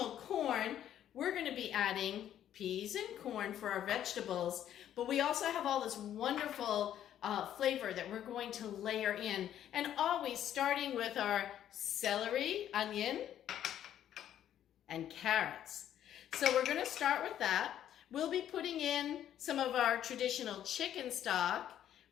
corn. We're going to be adding peas and corn for our vegetables. But we also have all this wonderful flavor that we're going to layer in. And always starting with our celery, onion, and carrots. So we're going to start with that. We'll be putting in some of our traditional chicken stock.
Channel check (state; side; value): quieter; right; 10.9 dB